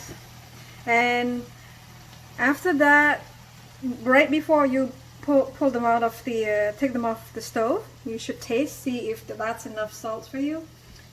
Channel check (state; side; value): identical; both; correlation 1.00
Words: And after that, right before you pull them out of the, take them off the stove, you should taste, see if that's enough salt for you.